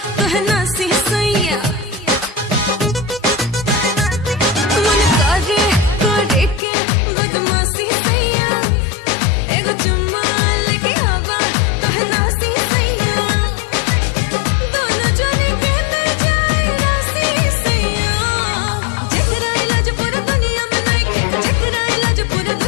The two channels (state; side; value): drops out; right; at 6.6 s